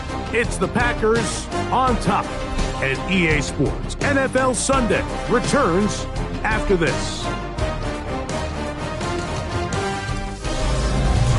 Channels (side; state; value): both; identical; correlation 1.00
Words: It's the Packers on top, and EA Sports NFL Sunday returns after this.